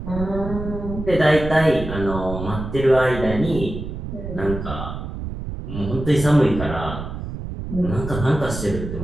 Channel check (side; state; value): right; noise; rumble, 7 dB below the sound